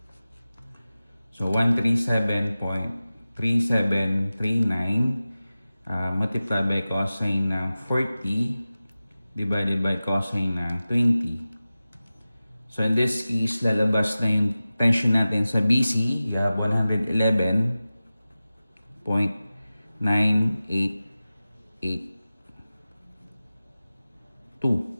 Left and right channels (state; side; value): inverted; both; correlation -0.96